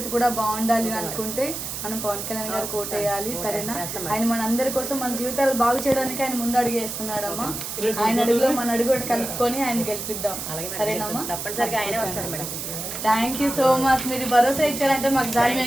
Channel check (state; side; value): noise; right; hiss, 6 dB below the sound